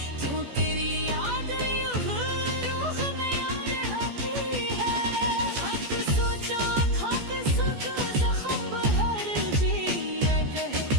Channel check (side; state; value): left; late; 14 ms